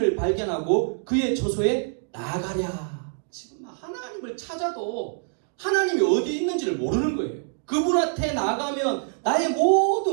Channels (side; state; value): left; silent; digital silence